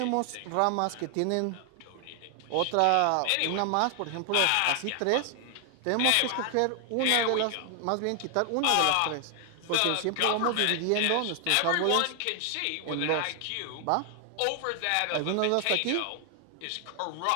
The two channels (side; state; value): both; different; correlation 0.00